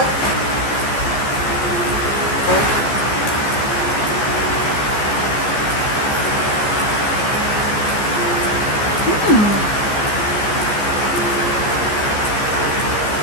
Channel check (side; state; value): right; late; 14 ms